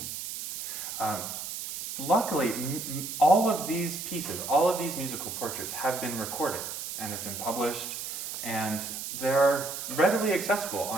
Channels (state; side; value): noise; right; hiss, 6 dB below the sound